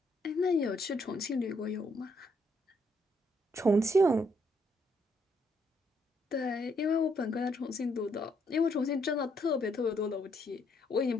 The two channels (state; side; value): normal; both; correlation 0.73